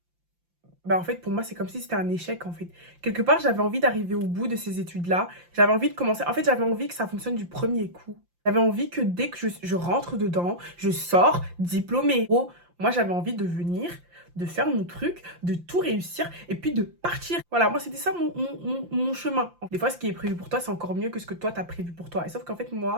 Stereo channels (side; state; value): left; late; 5.8 ms